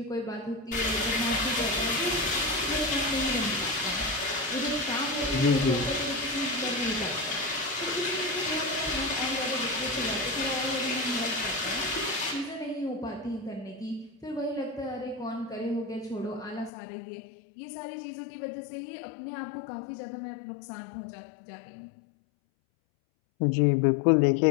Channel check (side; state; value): right; drops out; at 16.7 s